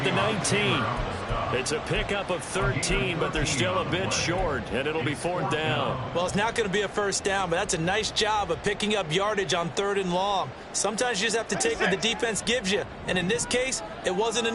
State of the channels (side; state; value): both; identical; correlation 1.00